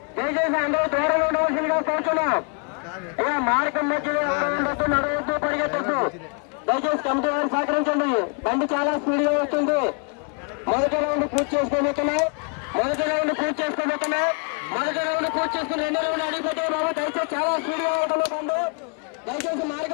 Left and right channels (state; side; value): quieter; right; 38.0 dB